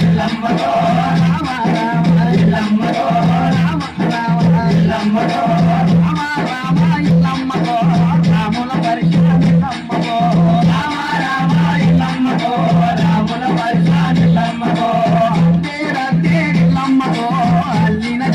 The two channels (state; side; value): identical; both; correlation 1.00